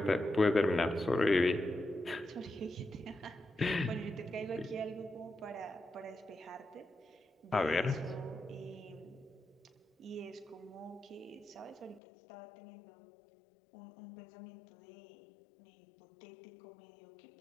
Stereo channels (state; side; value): drops out; right; at 12.0 s